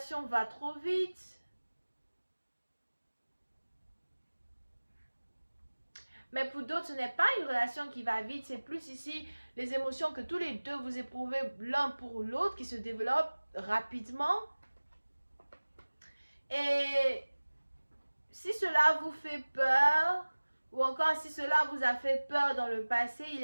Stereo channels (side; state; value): both; inverted; correlation -1.00